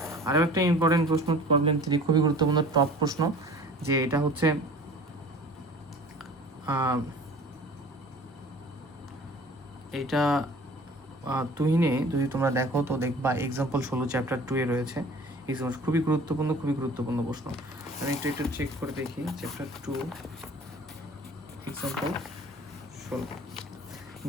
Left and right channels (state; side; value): normal; both; correlation 0.45